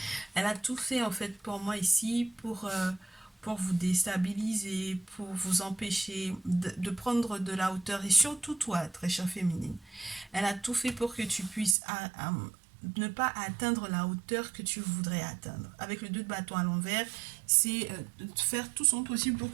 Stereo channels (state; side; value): drops out; left; at 11.8 s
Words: Elle a tout fait en fait pour moi ici pour vous déstabiliser, pour vous empêcher de prendre de la hauteur. Et surtout toi, très chère féminine, elle a tout fait pour que tu puisses ne pas atteindre la hauteur que tu voudrais atteindre. Avec le 2 de bâton à l'envers, c'est faire tout son possible pour